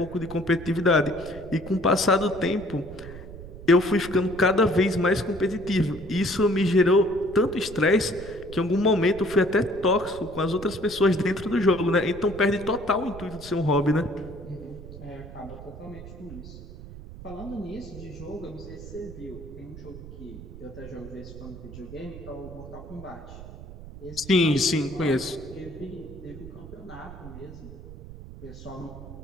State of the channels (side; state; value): right; noise; rumble, 14 dB below the sound